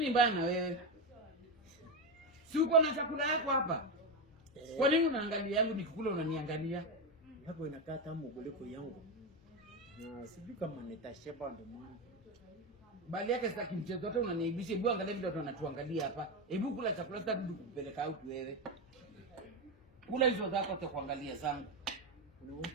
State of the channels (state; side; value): noise; left; hum, 28 dB below the sound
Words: mbaya na wewe? Si uko na chakula yako hapa? Kwa nini unaangalia yangu nikikula unaniangalia? Yako inakaa tamu kuliko yangu. Na sijui kama nitashiba ndo maana. Bali yake sitaki mchezo, hata unaniibisha. Hebu angalia vile watu wanatuangalia hapa. Hebu kula chakula, sitaki kukupeleka out wewe. Kula hizo zako hata kuangalia zangu.